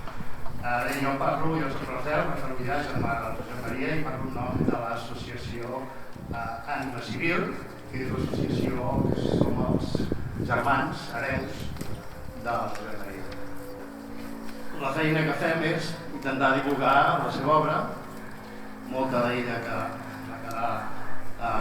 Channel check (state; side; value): identical; both; correlation 1.00